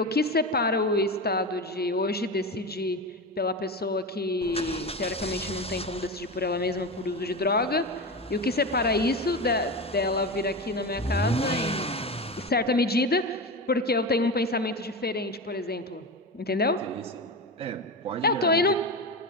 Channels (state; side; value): normal; both; correlation 0.22